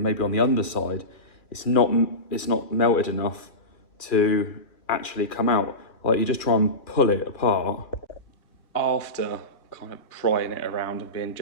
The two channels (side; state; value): right; late; 2.6 ms